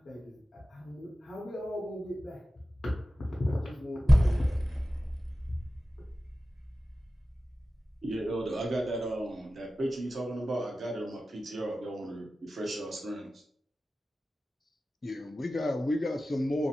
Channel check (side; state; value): both; normal; correlation 0.95